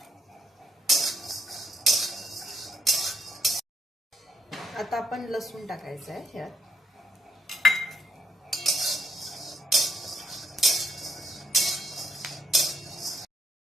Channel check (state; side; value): normal; both; correlation 0.74